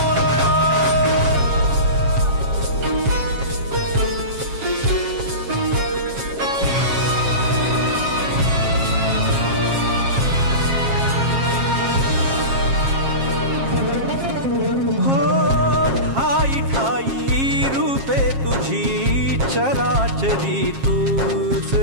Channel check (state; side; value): late; left; 7.4 ms